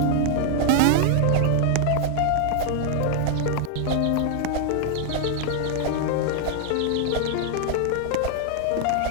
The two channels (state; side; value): different; both; correlation 0.00